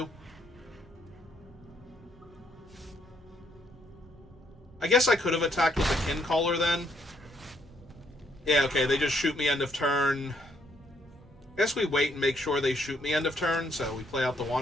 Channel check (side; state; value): both; normal; correlation 0.71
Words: I guess I could have attacked with the Kincaller then. Yeah, okay, they just shoot me end of turn. I guess we wait and make sure they shoot me end of turn, so we play out the